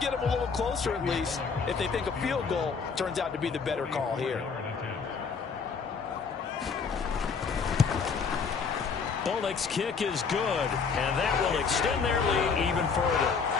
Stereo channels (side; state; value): right; quieter; 5.5 dB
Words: get them a little closer at least if they think a field goal turns out to be the better call here. Bullock's kick is good, and that will extend their lead even further.